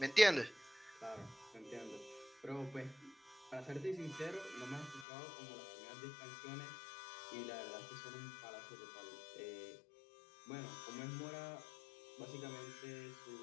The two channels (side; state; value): right; drops out; at 5.1 s